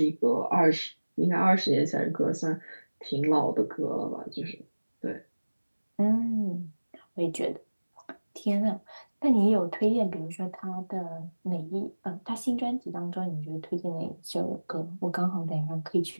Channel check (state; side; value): inverted; both; correlation -1.00